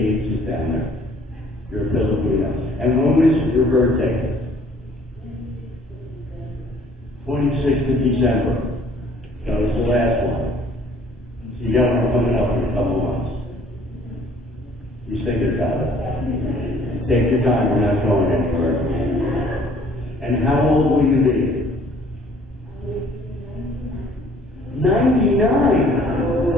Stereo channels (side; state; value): both; normal; correlation 0.57